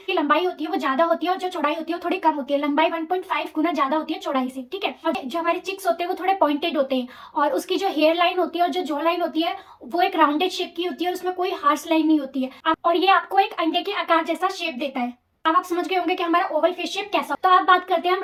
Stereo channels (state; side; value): identical; both; correlation 1.00